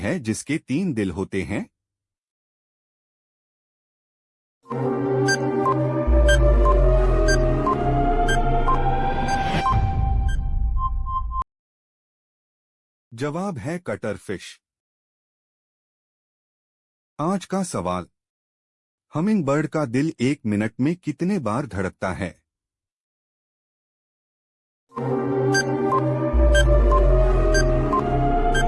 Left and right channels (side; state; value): both; identical; correlation 1.00